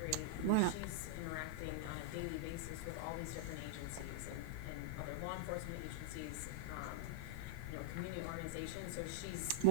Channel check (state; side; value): different; both; correlation -0.02